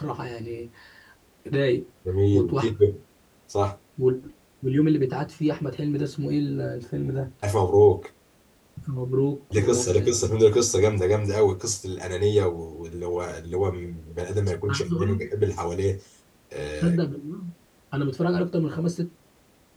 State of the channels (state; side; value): identical; both; correlation 1.00